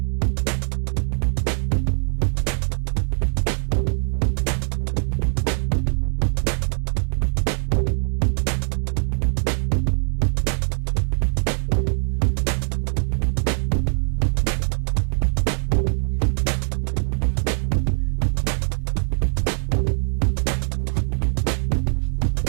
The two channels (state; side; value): silent; left; 64 dB below the other